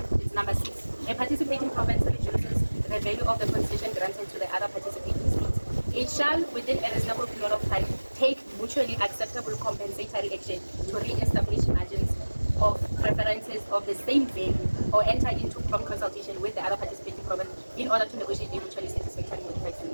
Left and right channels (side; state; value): both; inverted; correlation -1.00